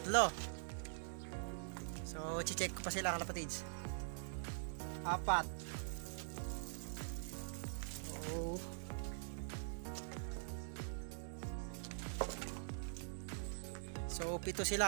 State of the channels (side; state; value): left; silent; digital silence